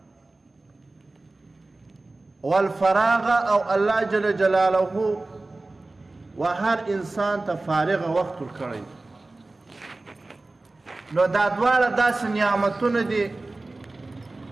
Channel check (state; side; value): quieter; left; 3.1 dB